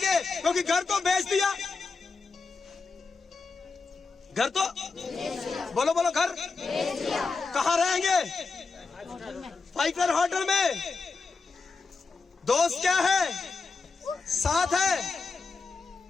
क्योंकि घर को बेच दिया। घर तो बोलो बोलो, घर कहाँ रहेंगे? 5 स्टार होटल में। दोस्त क्या है? साथ है।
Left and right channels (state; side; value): quieter; right; 4.4 dB